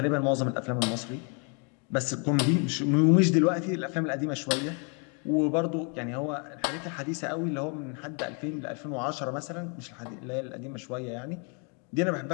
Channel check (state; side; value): quieter; right; 37.2 dB